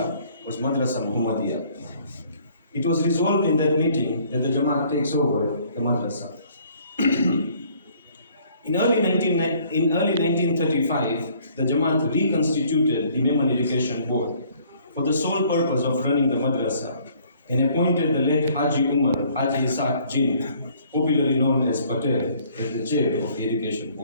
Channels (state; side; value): inverted; both; correlation -0.60